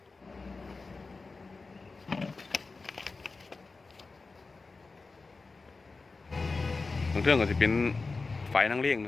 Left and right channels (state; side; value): quieter; right; 4.0 dB